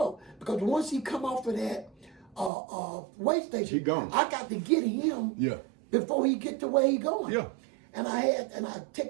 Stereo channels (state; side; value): drops out; left; at 2.5 s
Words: Because once he come off of that way station, he gone. I got to get him before he get to where he going. Yeah. And